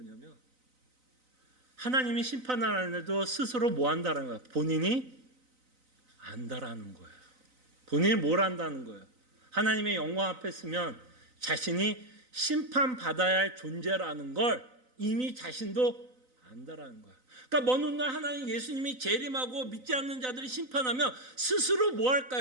하나님이 심판하는데도 스스로 뭐 한다는 거예요? 본인이 안다라는 거예요. 본인이 뭘 안다는 거예요? 하나님의 영광 앞에 서면 자신이 심판받아야 할 존재라는 걸 이미 자신도 안다라는 거예요. 그러니까 먼 훗날 하나님 예수님이 재림하고 믿지 않는 자들이 심판하면 스스로 뭐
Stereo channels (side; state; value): left; late; 3.9 ms